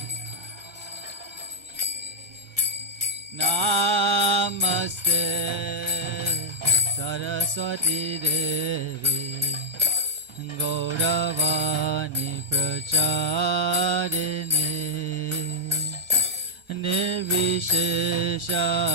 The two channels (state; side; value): late; left; 1.4 ms